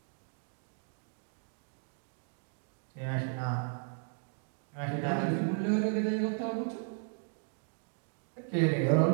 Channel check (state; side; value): silent; left; 54 dB below the other